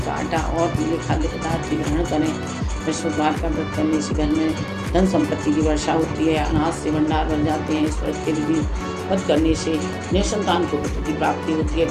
का आटा और पीले खाद्य पदार्थ की ग्रहण करें। बृहस्पतिवार का व्रत करने से घर में धन संपत्ति की वर्षा होती है, अनाज से भंडार भर जाते हैं। इस व्रत के विधि व्रत करने से निसंतान को पुत्र की प्राप्ति होती है।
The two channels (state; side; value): identical; both; correlation 1.00